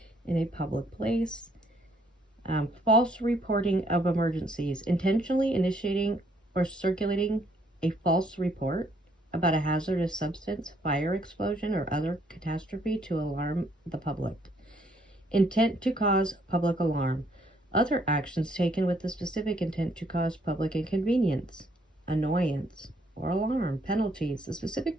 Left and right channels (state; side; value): normal; both; correlation 0.67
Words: in a public place. False reporting of emergencies, intentionally initiating or circulating a false report about a hazardous substance, fire, explosion, or other catastrophe to alarm the public. Intent to cause public alarm. Other actions taken with the specific intent to cause public inconvenience, annoyance, or alarm. Penalties. The specific